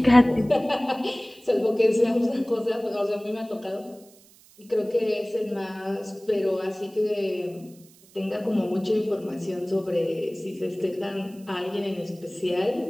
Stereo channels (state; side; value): noise; right; hiss, 26 dB below the sound